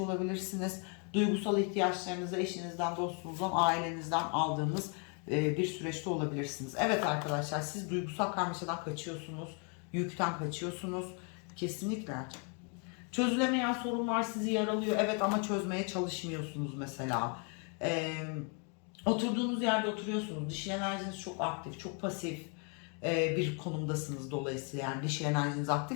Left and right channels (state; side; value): quieter; right; 37.8 dB